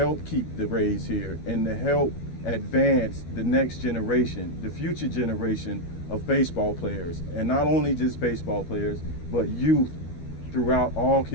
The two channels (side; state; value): right; late; 12 ms